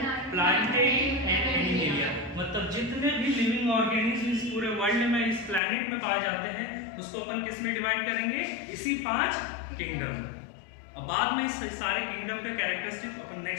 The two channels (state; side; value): drops out; right; at 5.6 s